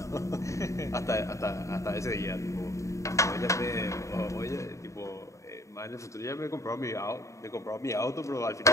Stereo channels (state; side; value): late; right; 0.15 ms